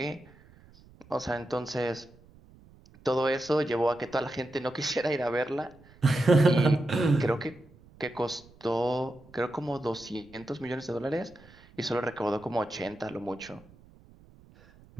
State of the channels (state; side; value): noise; right; rumble, 25 dB below the sound